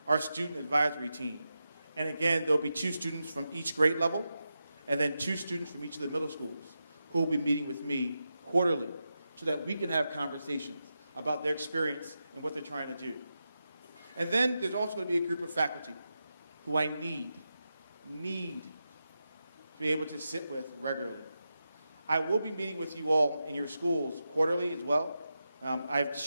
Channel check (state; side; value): inverted; both; correlation -0.89